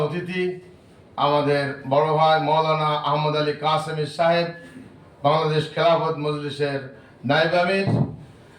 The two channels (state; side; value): identical; both; correlation 1.00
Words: অতিথি আমাদের বড় ভাই মাওলানা আহমদ আলী কাসেমি সাহেব, বাংলাদেশ খেলাফত মজলিসের নায়েব আমির,